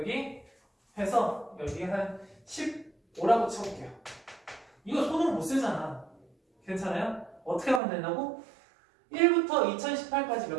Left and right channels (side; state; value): left; drops out; at 7.8 s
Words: 해서 여기 한 15라고 쳐볼게요. 이거 손으로 못 쓰잖아. 괜찮아요? 어떻게 하면 된다고? 1부터 2018까지